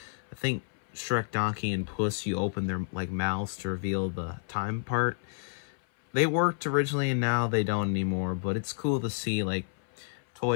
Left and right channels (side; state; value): right; silent; 58 dB below the other